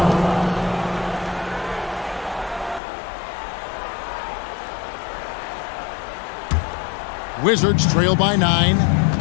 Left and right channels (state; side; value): drops out; right; at 2.8 s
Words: Wizards trail by 9.